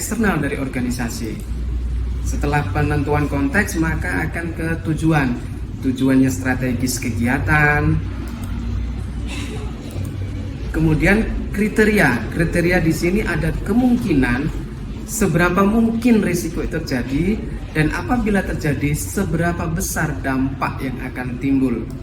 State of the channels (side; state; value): both; identical; correlation 1.00